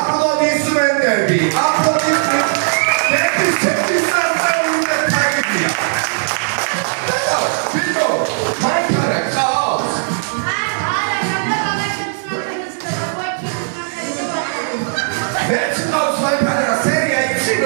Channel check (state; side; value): silent; left; digital silence